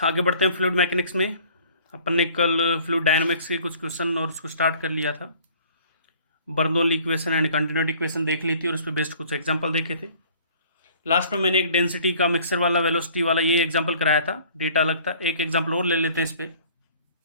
आगे बढ़ते हैं फ्लूइड मैकेनिक्स में। अपन ने कल फ्लूइड डायनामिक्स के कुछ क्वेश्चन और उसको स्टार्ट कर लिया था। Bernoulli equation and continuity equation देख ली थी और उस पर बेस्ड कुछ एग्जांपल देखे थे। लास्ट में मैंने एक डेंसिटी का मिक्सर वाला वेलोसिटी वाला ये एग्जांपल कराया था, डेटा अलग था। एक एग्जांपल और ले लेते हैं इस पर,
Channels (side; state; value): both; inverted; correlation -0.53